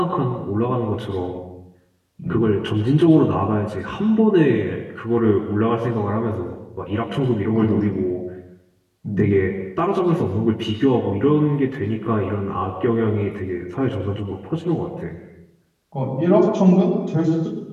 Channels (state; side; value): identical; both; correlation 1.00